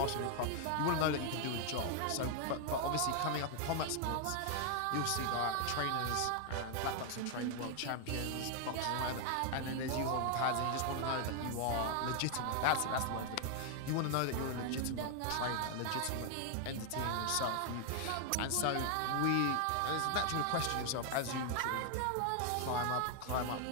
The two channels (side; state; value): both; different; correlation 0.00